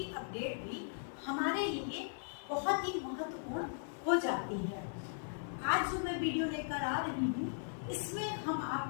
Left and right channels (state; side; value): silent; right; digital silence